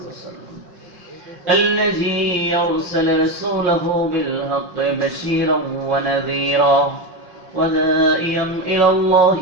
وسلم، الذي أرسل رسوله بالحق بشيرا ونذيرا وداعيا إلى الله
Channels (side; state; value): left; late; 5.7 ms